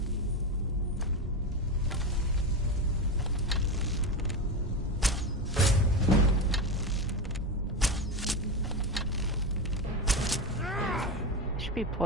I should be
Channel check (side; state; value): both; normal; correlation 0.17